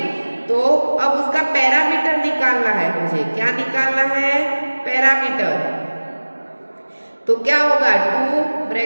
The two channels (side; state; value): both; inverted; correlation -1.00